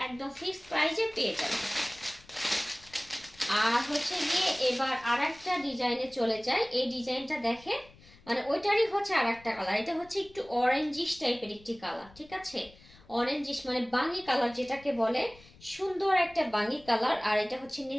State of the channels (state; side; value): noise; left; rumble, 24 dB below the sound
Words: একদম ফিক্সড প্রাইসে পেয়ে যাবেন। আর হচ্ছে গিয়ে এবার আর একটা ডিজাইনে চলে যায়। এই ডিজাইনটা দেখেন, মানে ওইটারই হচ্ছে আর একটা কালার। এটা হচ্ছে একটু অরেঞ্জিশ টাইপের একটি কালার, ঠিক আছে? অরেঞ্জিশ মানে বাঙ্গি কালার যেটাকে বলে, সুন্দর একটা বাঙ্গি কালার। আর এটা হচ্ছে